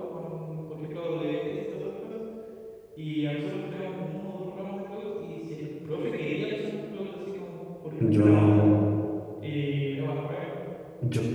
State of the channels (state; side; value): identical; both; correlation 1.00